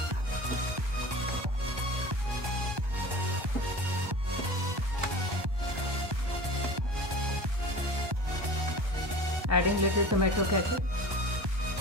Adding little tomato ketchup.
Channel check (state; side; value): late; left; 1.2 ms